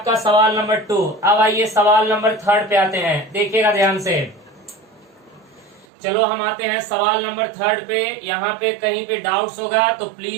सवाल नंबर 2। अब आइए सवाल नंबर 3 पे आते हैं, देखिएगा ध्यान से। चलो हम आते हैं सवाल नंबर 3 पे। यहाँ पे कहीं पे डाउट्स होगा तो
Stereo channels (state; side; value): drops out; left; at 5.9 s